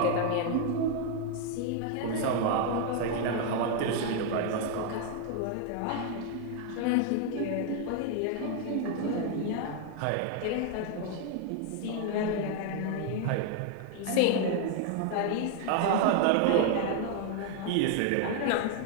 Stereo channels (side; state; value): both; different; correlation 0.00